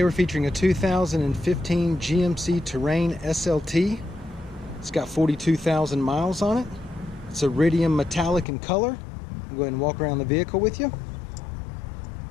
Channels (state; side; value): drops out; right; at 8.5 s